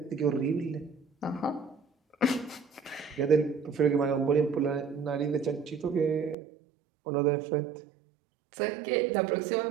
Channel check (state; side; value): drops out; left; at 6.4 s